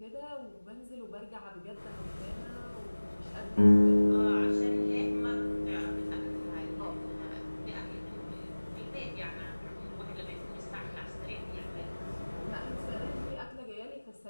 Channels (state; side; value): inverted; both; correlation -1.00